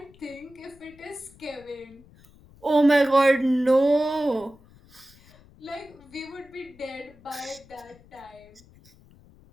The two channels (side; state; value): left; noise; rumble, 26 dB below the sound